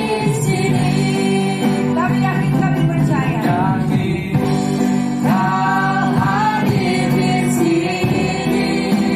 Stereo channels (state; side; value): identical; both; correlation 1.00